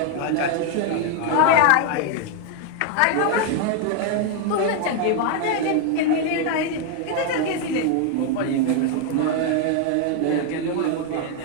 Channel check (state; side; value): different; both; correlation 0.01